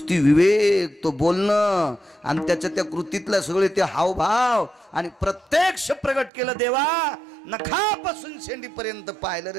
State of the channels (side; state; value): left; drops out; at 6.3 s